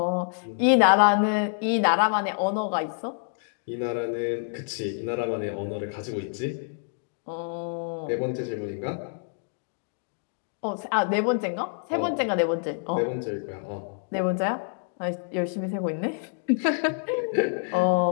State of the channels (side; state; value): right; silent; 60 dB below the other